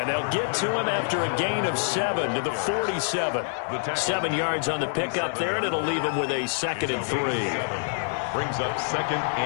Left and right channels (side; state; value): right; silent; digital silence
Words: they'll get to him after a gain of 7 to the 47. 7 yards on the pickup there, and it'll leave him with a 2nd and 3. Brings up 2nd